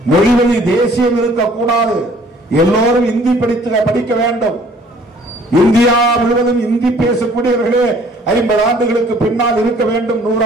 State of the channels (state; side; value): normal; both; correlation 0.57